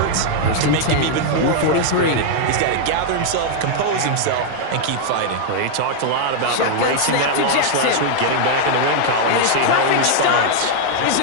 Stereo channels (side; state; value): both; different; correlation -0.01